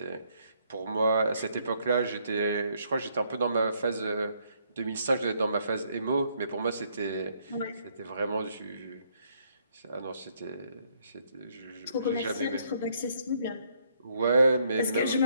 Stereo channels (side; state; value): both; inverted; correlation -0.69